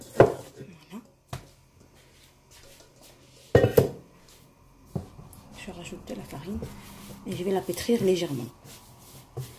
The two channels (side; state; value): both; identical; correlation 1.00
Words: Voilà. Je rajoute de la farine et je vais la pétrir légèrement.